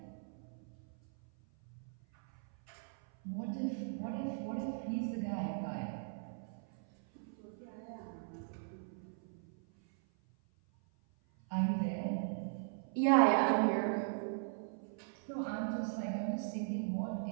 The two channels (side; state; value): left; silent; 52 dB below the other